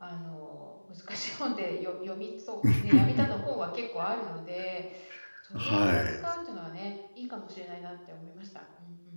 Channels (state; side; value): inverted; both; correlation -1.00